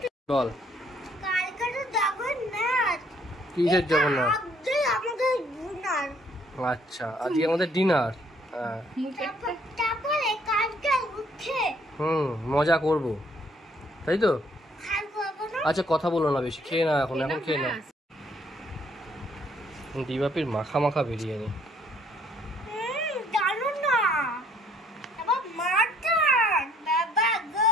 বল কিসের জগন্নাথ? আচ্ছা, আজকে আমাদের ডিনার। মজা করব, তাই তো? আচ্ছা কথা বলো না বেশি, খেয়ে না এখন খেয়ে না। ডিবাপির মাখা বিরিয়ানি।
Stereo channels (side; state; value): both; normal; correlation 0.64